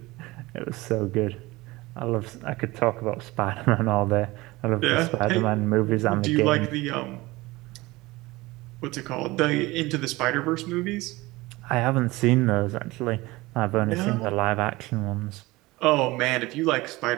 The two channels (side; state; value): left; quieter; 20.7 dB